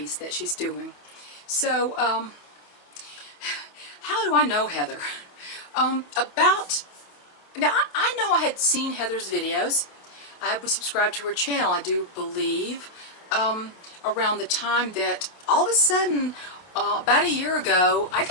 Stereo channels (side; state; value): right; late; 28 ms